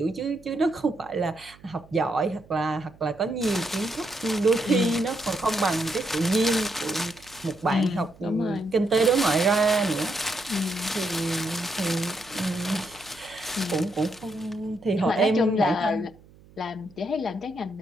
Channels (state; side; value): noise; right; hum, 25 dB below the sound